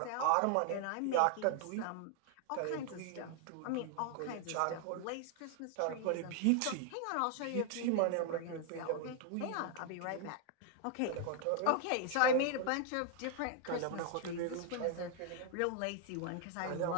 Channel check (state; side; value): different; both; correlation 0.00